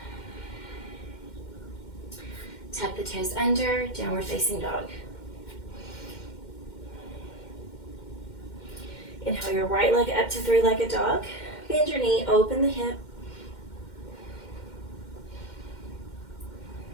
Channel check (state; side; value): late; right; 2.1 ms